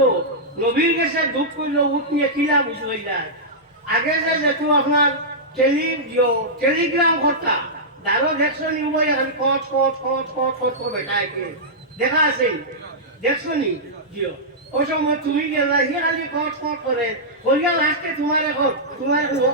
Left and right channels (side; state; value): both; normal; correlation -0.12